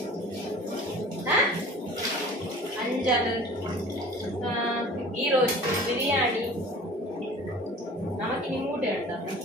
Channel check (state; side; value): normal; both; correlation 0.44